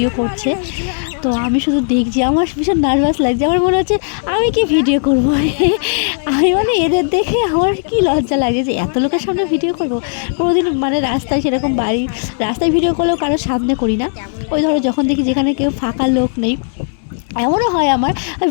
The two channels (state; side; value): silent; right; digital silence